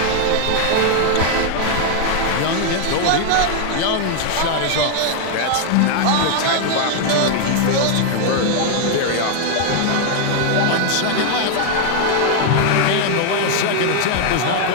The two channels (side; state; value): both; different; correlation 0.00